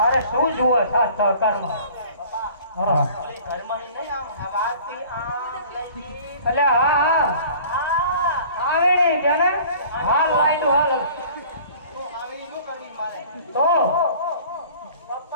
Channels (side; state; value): both; inverted; correlation -0.48